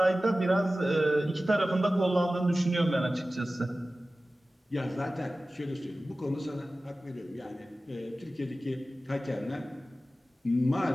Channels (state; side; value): normal; both; correlation 0.96